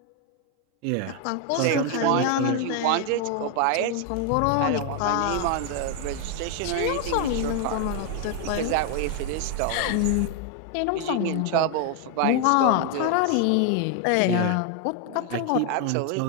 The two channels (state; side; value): different; both; correlation 0.01